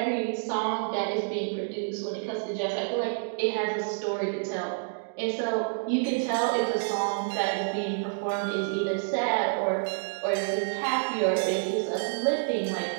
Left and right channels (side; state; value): left; silent; digital silence